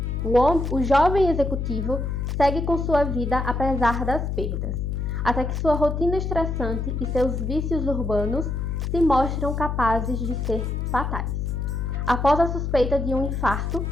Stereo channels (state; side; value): noise; left; hum, 2 dB below the sound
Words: o jovem executivo segue com sua vida apesar das perdas, até que sua rotina estressante e seus vícios urbanos se mostram capazes de ser fatais. Após a suspeita de um infarto,